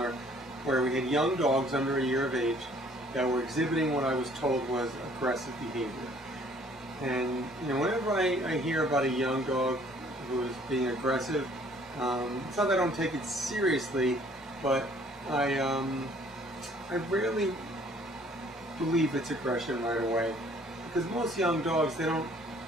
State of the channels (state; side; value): normal; both; correlation 0.58